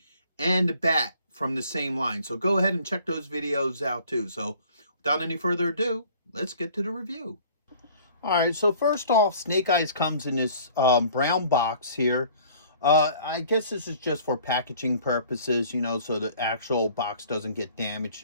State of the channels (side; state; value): both; inverted; correlation -0.52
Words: and the Bat from the same line. So go ahead and check those videos out too. So without any further ado, let's get to the review. All right, so first off, Snake Eyes comes in this brown box here. I guess this is just for packaging purposes, you know, so the actual box doesn't get